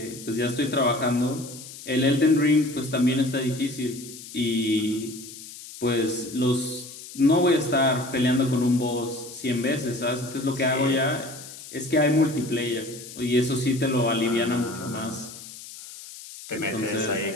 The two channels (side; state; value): left; noise; hiss, 14 dB below the sound